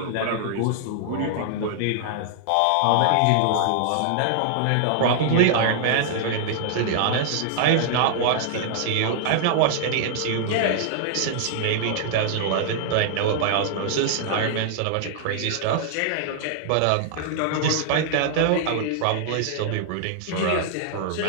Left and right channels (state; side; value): different; both; correlation -0.01